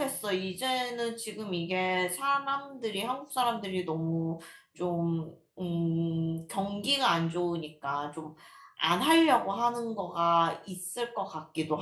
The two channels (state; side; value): identical; both; correlation 1.00